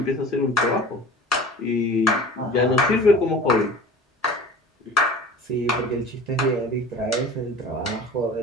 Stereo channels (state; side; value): normal; both; correlation 0.40